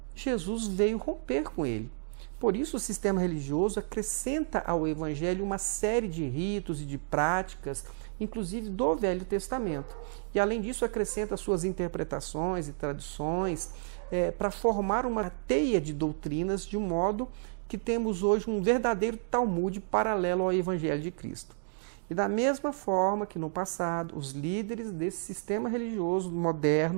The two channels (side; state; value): left; silent; digital silence